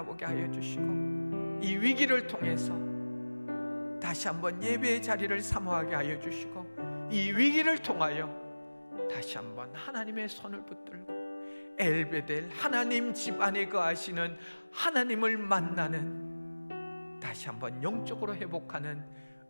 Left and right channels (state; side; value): inverted; both; correlation -1.00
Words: 하여 주시고, 이 위기를 통해서 다시 한번 예배의 자리를 사모하게 하여 주시고, 이 위기를 통하여 다시 한번 하나님의 손을 붙들고 엘베델, 하나님 집 안에 거하시는 하나님을 만나는, 다시 한번 영적으로 회복하는